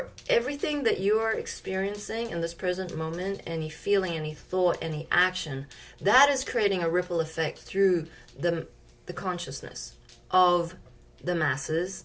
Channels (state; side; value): identical; both; correlation 1.00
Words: everything that you are experiencing in this present moment, any feeling, any thought, any action, that is creating a ripple effect through the consciousness of the masses